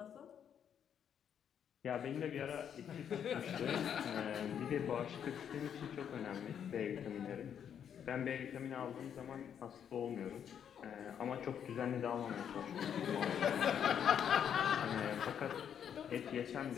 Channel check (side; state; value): right; quieter; 8.5 dB